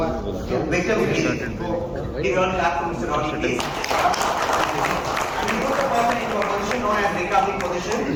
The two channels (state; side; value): identical; both; correlation 1.00